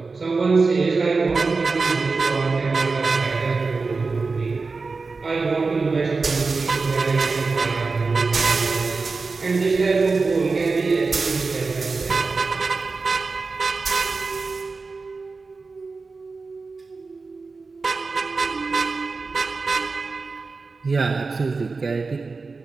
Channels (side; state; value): left; quieter; 4.2 dB